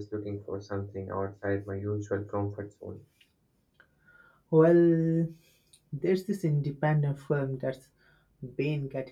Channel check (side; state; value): both; identical; correlation 1.00